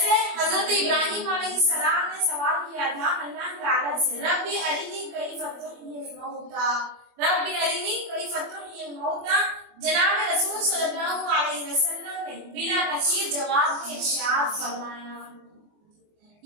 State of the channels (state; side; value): late; left; 24 ms